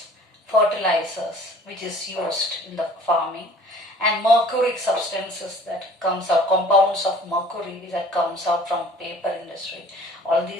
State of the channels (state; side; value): normal; both; correlation 0.50